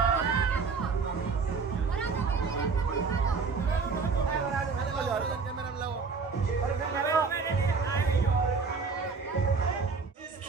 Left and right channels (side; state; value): left; quieter; 4.9 dB